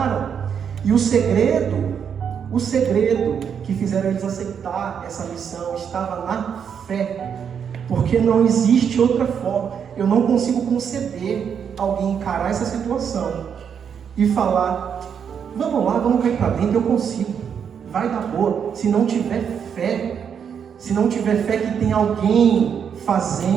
E o segredo que fizeram eles aceitar essa missão estava na fé. Porque não existe outra forma. Eu não consigo conceber alguém encarar essa situação e falar, vamos lá, vamos cair para dentro, eu consigo, vai dar boa. Se não tiver fé que tem alguém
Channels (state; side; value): quieter; left; 7.5 dB